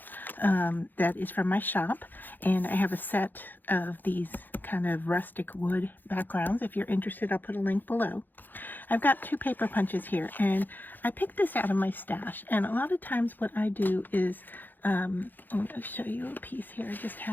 that is from my shop, and I have a set of these kind of rustic wood backgrounds. If you're interested, I'll put a link below. I've got 2 paper punches here, and I picked this out of my stash. And a lot of times what I do is I'm going to show you a piece here I just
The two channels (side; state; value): right; late; 0.088 ms